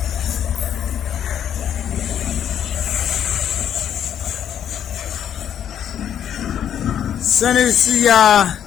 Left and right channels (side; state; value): right; quieter; 9.6 dB